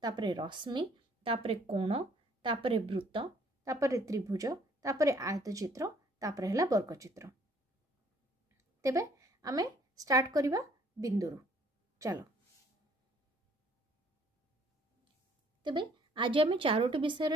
तापरे रश्मि तापरे कोण तापरे वृत्त तापरे त्रिभुज तापरे आयत चित्र तापरे है वर्ग चित्र। तेबे आमे स्टार्ट करिवा बिंदु चलो तेबे आज आमे चारोटी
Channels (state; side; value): normal; both; correlation 0.61